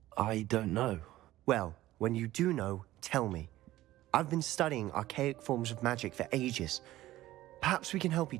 don't know. Well, when you do know, tell me. I've been studying archaic forms of magic for ages. Perhaps we can help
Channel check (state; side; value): quieter; left; 15.6 dB